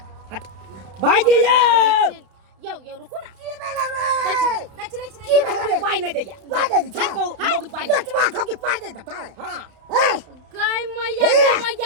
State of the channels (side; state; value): left; late; 32 ms